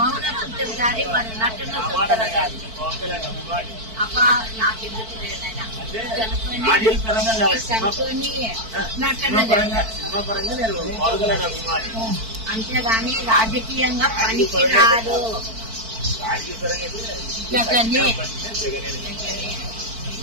చూస్తారు కానీ వాడు నటన చూస్తారు కానీ అబ్బా నాకెందుకు లేదైనా చనుకొని నటన అంతేగాని రాజకీయంగా పనికి రాదు. జగనే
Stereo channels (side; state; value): left; late; 4.5 ms